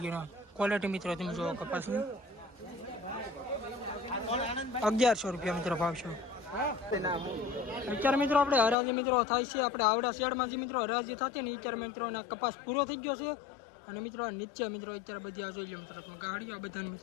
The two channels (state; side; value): drops out; right; at 8.8 s